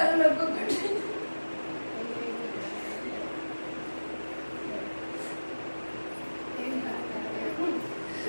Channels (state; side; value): inverted; both; correlation -1.00